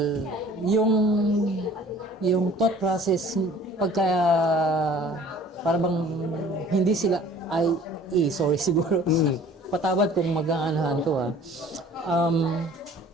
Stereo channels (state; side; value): normal; both; correlation 0.50